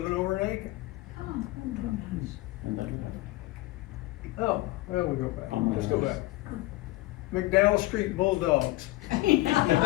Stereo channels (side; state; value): right; quieter; 19.1 dB